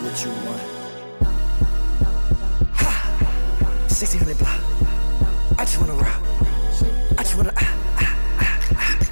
what you want. 1600 block. I just wanna rock. I just wanna.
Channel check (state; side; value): inverted; both; correlation -1.00